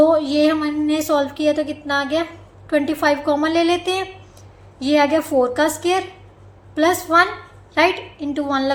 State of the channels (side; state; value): both; identical; correlation 1.00